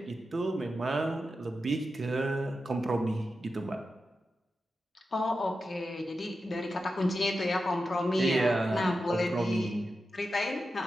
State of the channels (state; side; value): normal; both; correlation 0.90